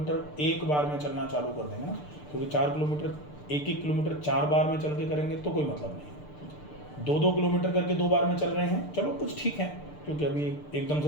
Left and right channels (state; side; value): late; right; 6.7 ms